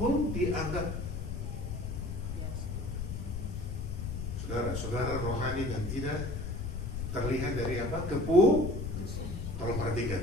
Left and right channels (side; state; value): left; noise; rumble, 4 dB below the sound